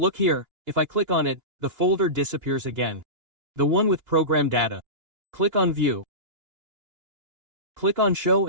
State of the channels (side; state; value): left; late; 2.9 ms